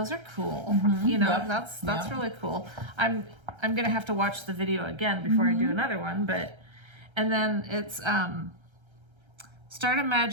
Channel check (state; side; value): late; left; 1.3 ms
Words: are cool. You know, that's really cool. I'm gonna have to watch the video again before I do another one. And then it's start a